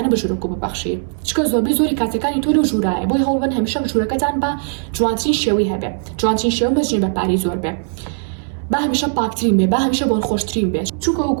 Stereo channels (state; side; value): silent; left; digital silence